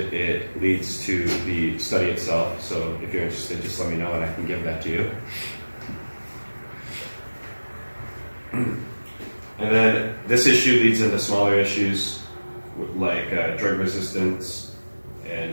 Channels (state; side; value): inverted; both; correlation -1.00